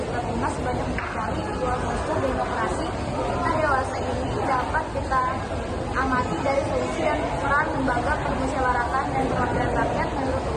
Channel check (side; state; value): both; identical; correlation 1.00